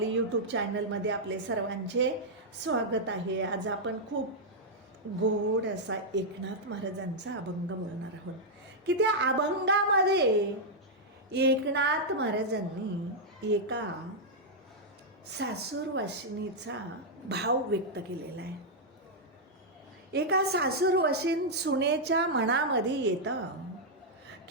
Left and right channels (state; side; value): normal; both; correlation -0.05